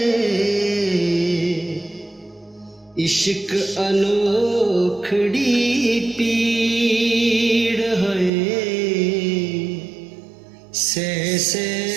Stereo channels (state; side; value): drops out; left; at 8.3 s